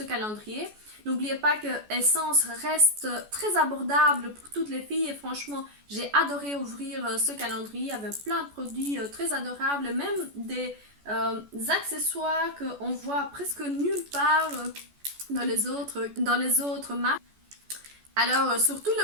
calendrier. N'oubliez pas que Essence reste très abordable pour toutes les filles et franchement, j'ai adoré ouvrir ce calendrier. Il y avait plein de produits très adorables, même des accessoires qu'on voit presque nulle part dans les autres marques. Alors, surtout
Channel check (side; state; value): left; late; 14 ms